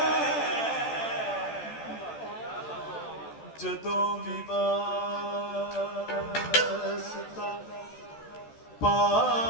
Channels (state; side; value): late; right; 14 ms